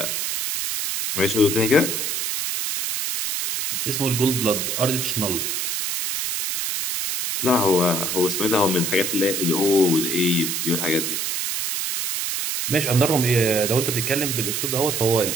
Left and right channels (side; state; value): right; noise; hiss, 1 dB below the sound